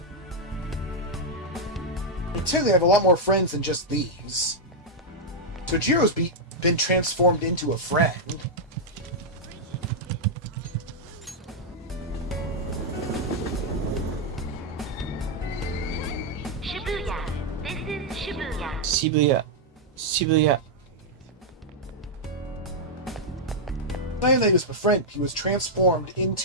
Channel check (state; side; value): normal; both; correlation -0.04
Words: I technically have a lot more friends than just these. So Jiro's been transformed into a friend. Shibuya. This is Shibuya. Shibuya. Shibuya. Not only was a friend, he was transformed